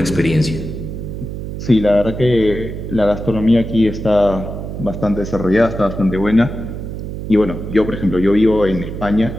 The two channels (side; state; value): right; noise; hum, 7 dB below the sound